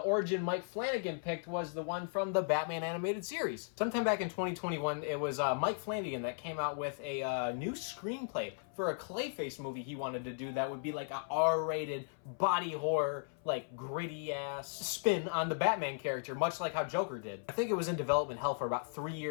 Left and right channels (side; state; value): right; silent; 54 dB below the other